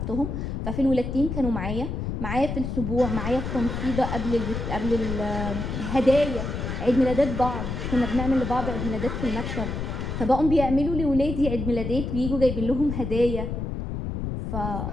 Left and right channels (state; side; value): noise; left; rumble, 4 dB below the sound